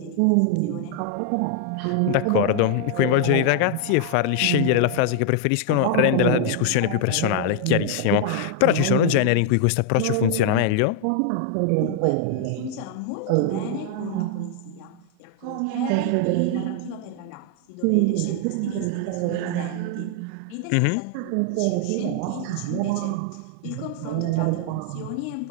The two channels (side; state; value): both; different; correlation 0.00